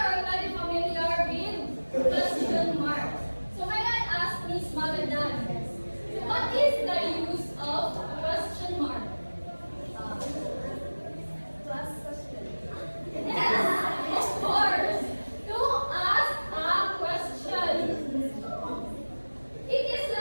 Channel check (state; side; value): inverted; both; correlation -1.00